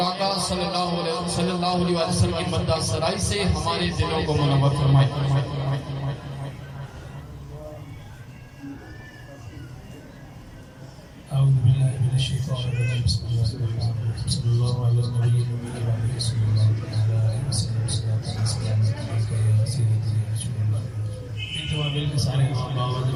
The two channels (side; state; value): both; identical; correlation 1.00